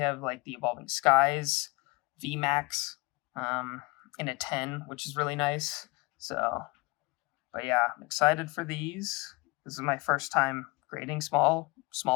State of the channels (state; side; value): quieter; right; 26.0 dB